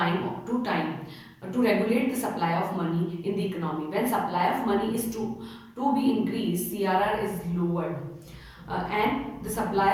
to time to regulate the supply of money in the economy. When supply of money is to be increased, CRR is lowered, and the supply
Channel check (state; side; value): identical; both; correlation 1.00